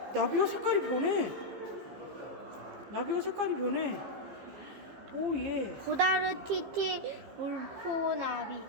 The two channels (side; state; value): left; late; 15 ms